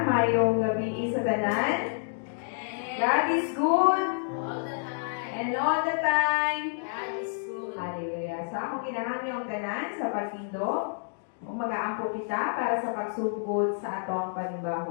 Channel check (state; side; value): silent; right; digital silence